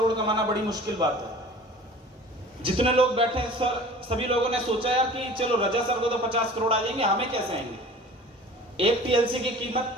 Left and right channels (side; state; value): both; normal; correlation 0.43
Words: कमाना बड़ी मुश्किल बात है। जितने लोग बैठे हैं सर, सभी लोगों ने सोचा यार कि चलो रजा सर को तो 50 करोड़ आ जाएंगे, हमें कैसे आएंगे। एक TLC की कीमत